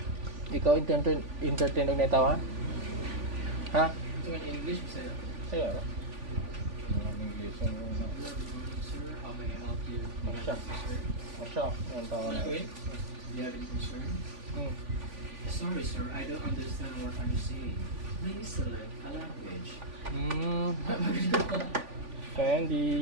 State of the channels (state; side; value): late; left; 3.5 ms